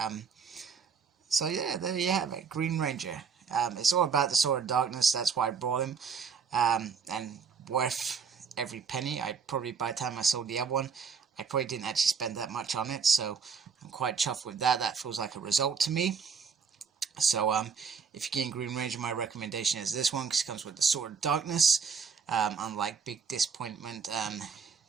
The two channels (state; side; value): quieter; left; 6.1 dB